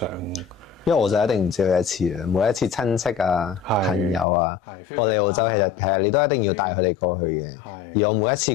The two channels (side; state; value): right; drops out; at 4.2 s